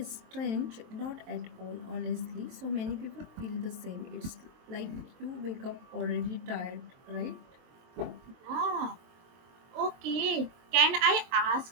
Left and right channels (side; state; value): left; late; 23 ms